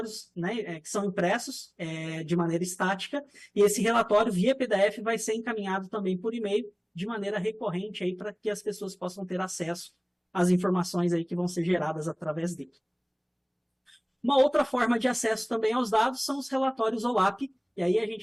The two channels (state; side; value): identical; both; correlation 1.00